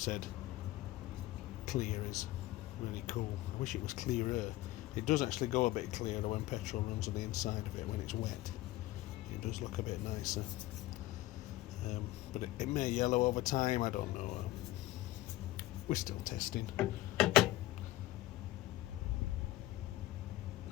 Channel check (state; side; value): quieter; right; 16.6 dB